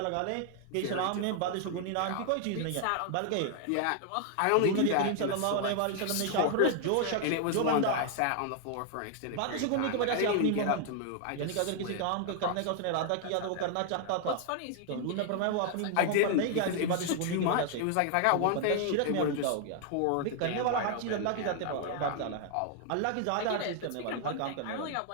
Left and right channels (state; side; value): different; both; correlation 0.00